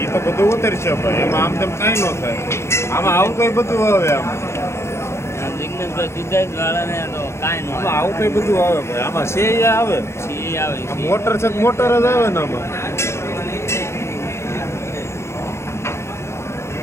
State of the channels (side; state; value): right; late; 0.13 ms